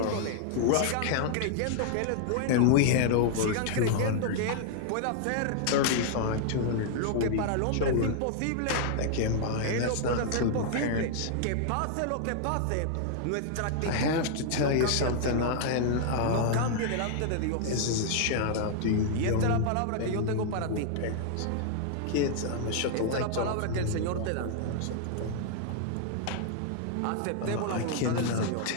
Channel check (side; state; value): both; different; correlation -0.01